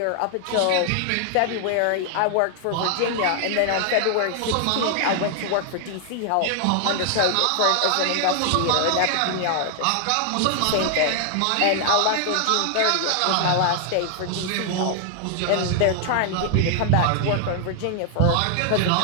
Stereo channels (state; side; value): different; both; correlation 0.00